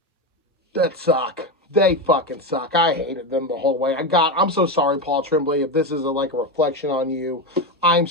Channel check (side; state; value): both; normal; correlation 0.14